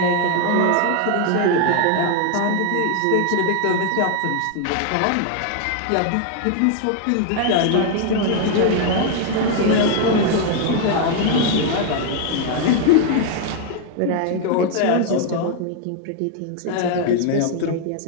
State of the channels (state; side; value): different; both; correlation 0.00